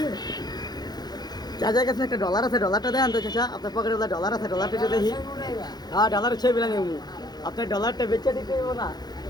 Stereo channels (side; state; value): right; late; 0.20 ms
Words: চাচার কাছে একটা ডলার আছে ডলারটা দেন তো চাচা আপনার পকেটে ডলার আছে ডলারটা যদি দেখি হ্যাঁ ডলার ছবি বিলা নেব আপনার ডলারটা বেচে দিতে হইব না